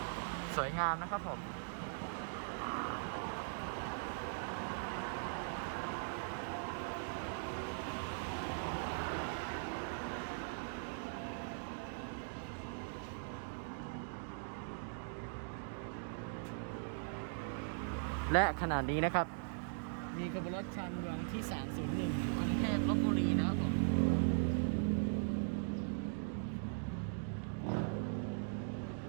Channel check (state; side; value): silent; left; digital silence